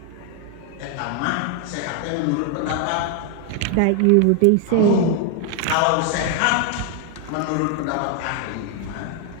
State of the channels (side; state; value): both; different; correlation 0.00